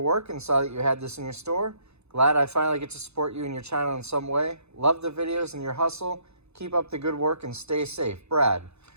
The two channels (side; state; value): left; late; 0.80 ms